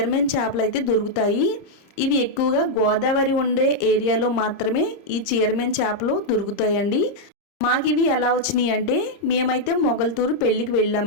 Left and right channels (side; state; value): right; late; 30 ms